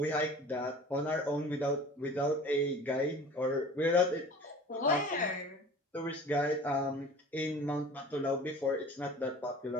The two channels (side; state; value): both; normal; correlation 0.42